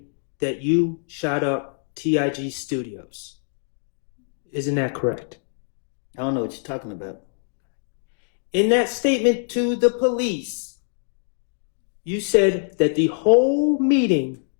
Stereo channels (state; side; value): silent; right; digital silence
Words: that you shot up TIG Studios. Isn't that correct? I don't know what you're talking about. In that statement to the police, you said that the whole meeting